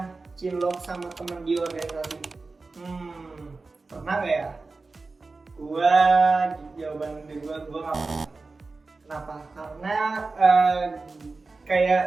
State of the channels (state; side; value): quieter; left; 3.8 dB